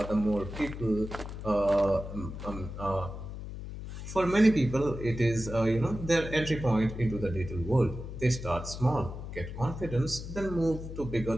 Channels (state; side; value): noise; left; hum, 9 dB below the sound